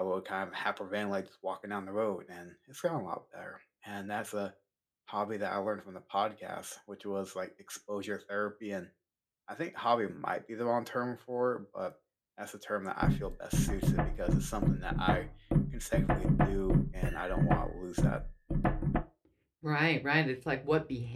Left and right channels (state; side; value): identical; both; correlation 1.00